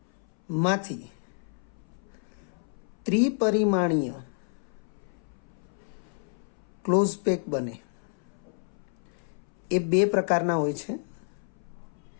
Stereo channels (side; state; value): right; silent; 58 dB below the other